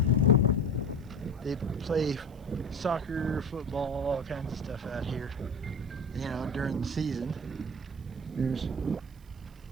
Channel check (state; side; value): noise; right; hiss, 30 dB below the sound